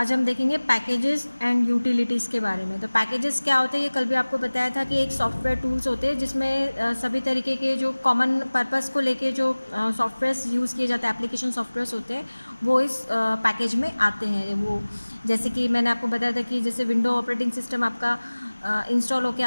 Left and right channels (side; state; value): both; inverted; correlation -1.00